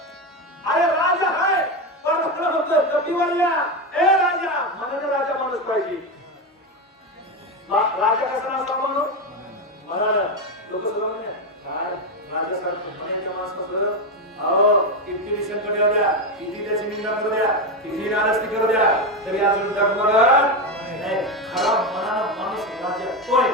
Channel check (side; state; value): both; normal; correlation 0.12